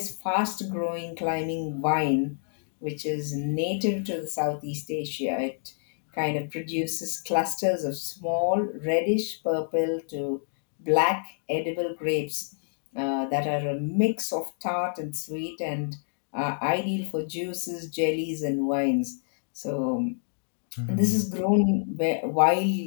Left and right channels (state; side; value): silent; right; digital silence